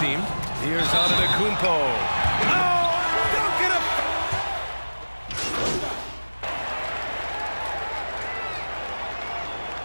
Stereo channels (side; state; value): both; inverted; correlation -1.00